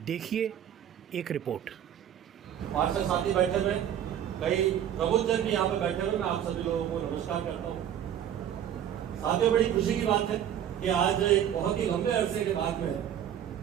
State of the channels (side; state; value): left; quieter; 10.1 dB